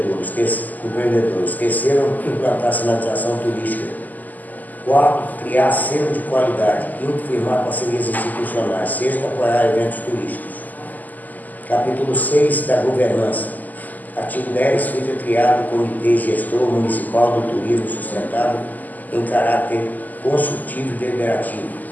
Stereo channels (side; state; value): right; late; 0.082 ms